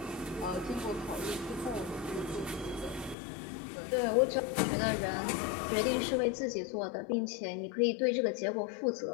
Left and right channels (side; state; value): right; drops out; at 3.2 s